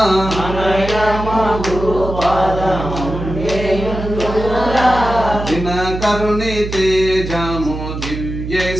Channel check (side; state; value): right; noise; hum, 7 dB below the sound